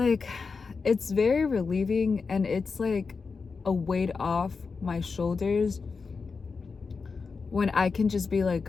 it's very relieving, and it's like a weight off my shoulders when I can just be like,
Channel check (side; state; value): right; quieter; 4.8 dB